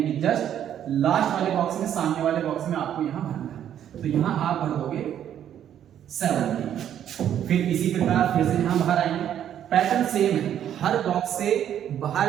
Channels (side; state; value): left; quieter; 10.1 dB